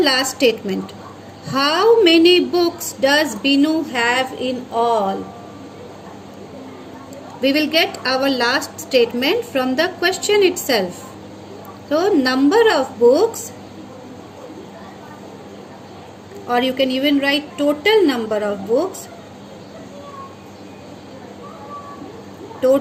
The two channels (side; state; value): both; identical; correlation 1.00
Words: statement. How many books does Binu have in all? We will get our last statement from the question itself. So, number of books, or you can even write total number of books.